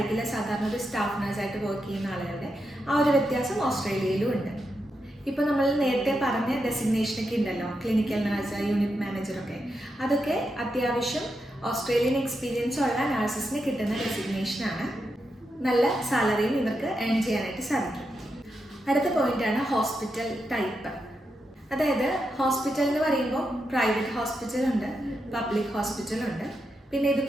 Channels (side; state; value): both; normal; correlation 0.85